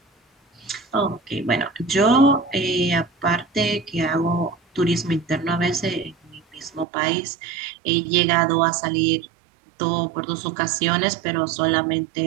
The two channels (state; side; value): drops out; left; at 6.9 s